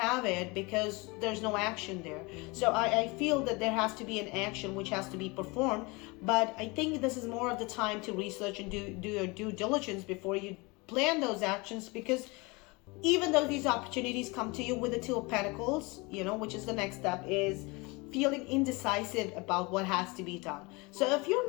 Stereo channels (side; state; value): right; quieter; 26.2 dB